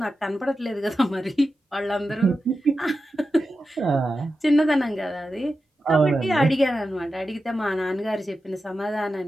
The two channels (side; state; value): both; normal; correlation 0.91